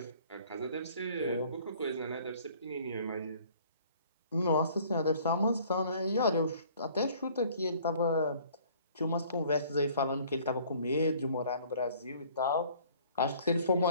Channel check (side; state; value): both; inverted; correlation -0.55